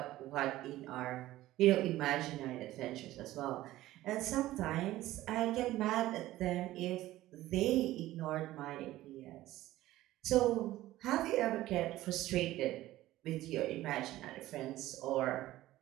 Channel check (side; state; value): left; quieter; 15.7 dB